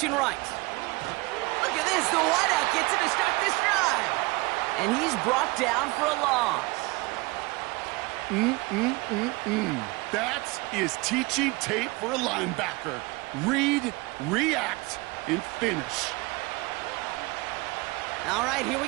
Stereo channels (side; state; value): left; quieter; 24.2 dB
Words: right. Look at this, the wideout gets him to start this drive. And he's brought down for a loss. That is teaching tape for a linebacker. Read, react, and finish. All right, here we